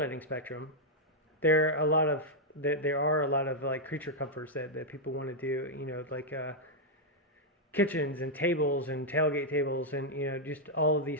spectrum, there are a lot of like creature comforts that people want to do, like kitchens and tables and tailgate tables and just all of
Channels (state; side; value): normal; both; correlation -0.03